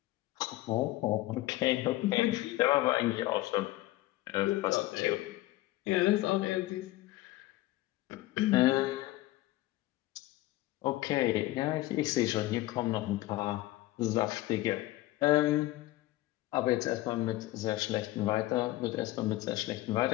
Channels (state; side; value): quieter; right; 17.2 dB